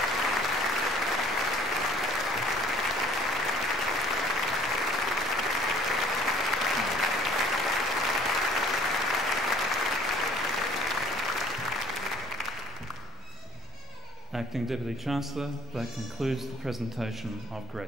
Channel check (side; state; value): both; normal; correlation 0.53